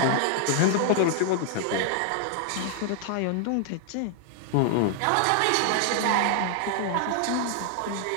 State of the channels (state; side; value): different; both; correlation 0.00